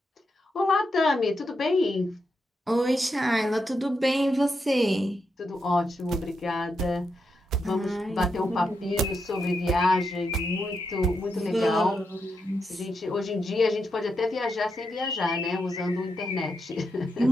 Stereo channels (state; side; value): normal; both; correlation 0.84